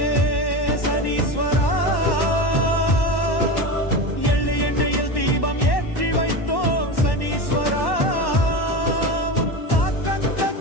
சனீஸ்வரா எள்ளு எண்ணெயில் தீபம் ஏற்றி வைத்தோம் சனீஸ்வரா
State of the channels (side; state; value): right; late; 1.1 ms